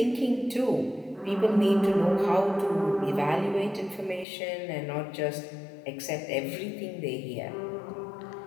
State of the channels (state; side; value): drops out; right; at 4.2 s